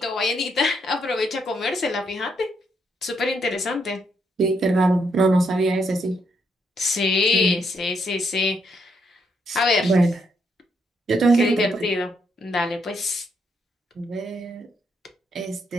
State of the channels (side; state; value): both; normal; correlation 0.76